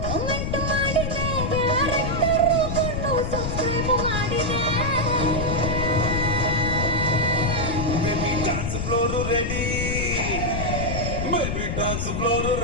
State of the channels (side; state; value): left; noise; rumble, 2 dB below the sound